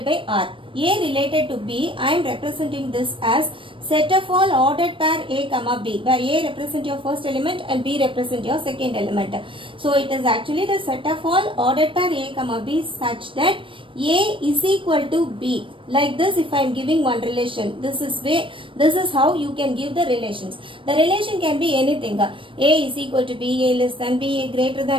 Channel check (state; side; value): late; left; 0.25 ms